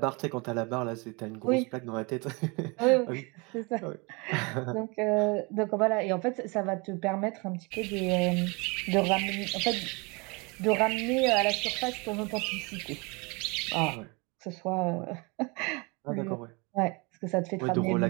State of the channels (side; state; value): left; quieter; 28.8 dB